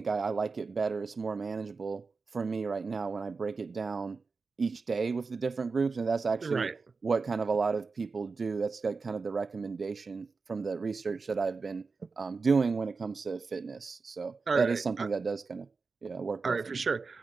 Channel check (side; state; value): left; quieter; 4.5 dB